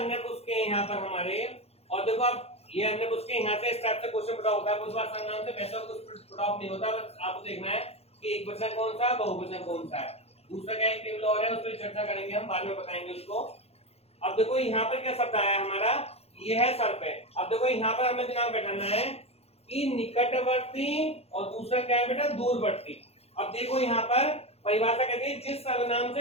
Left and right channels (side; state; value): right; late; 0.29 ms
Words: पुरुष के यहाँ पर हमारे। और देखो आप ये अन्य पुरुष के यहाँ से इस टाइप से क्वेश्चन पढ़ा होता है, उस बार सर्वनाम से वैसा कुछ पढ़ा नहीं होता, बस आपको देखना है कि एक वचन कौन सा है, बहुवचन कौन सा है। दूसरा क्या एक टेबल और है, उस पर चर्चा करेंगे हम, बाद में बताएंगे उसको। अब देखो यहाँ पर क्या शब्द आया हमारा, ये है सर्प है। अब देखो यहाँ पर हमें दिमाग बैठाना है कि निकटवर्ती और दूसरा क्या है बेटा, दूरवर्ती। अब देखो यहाँ पर परिभाषा कहती है जिस सर्वनाम